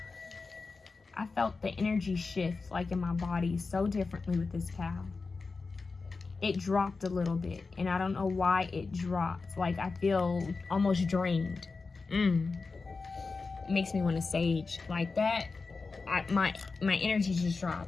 I felt the energy shift like in my body so differently with this cow. It dropped a little bit, and I don't know why it dropped. Like I feel almost drained. It makes me want to sage like that. My energy just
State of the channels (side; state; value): right; quieter; 4.2 dB